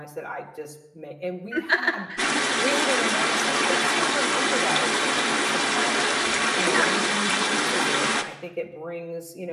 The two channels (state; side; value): identical; both; correlation 1.00